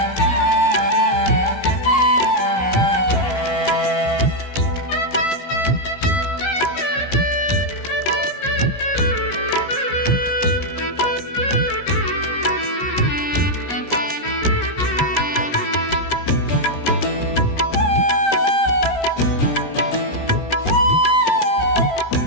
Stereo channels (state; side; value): late; right; 17 ms